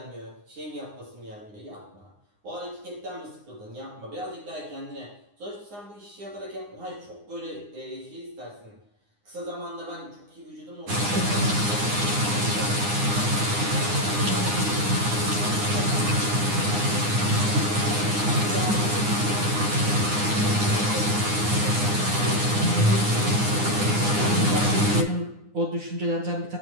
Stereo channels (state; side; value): late; left; 9.7 ms